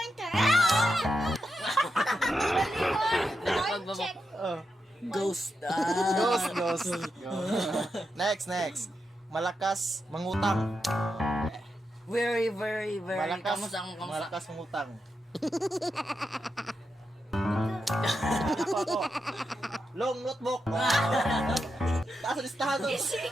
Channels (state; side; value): normal; both; correlation 0.86